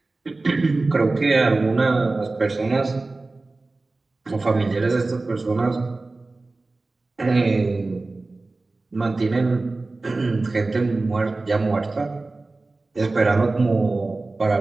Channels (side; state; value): left; quieter; 3.3 dB